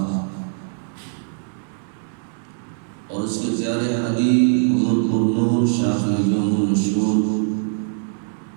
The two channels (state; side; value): silent; left; digital silence